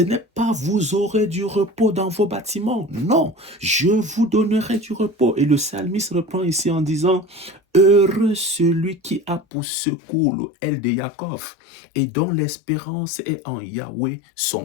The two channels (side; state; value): right; drops out; at 9.4 s